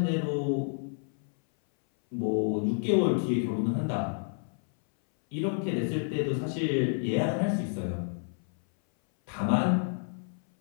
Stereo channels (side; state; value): right; silent; 58 dB below the other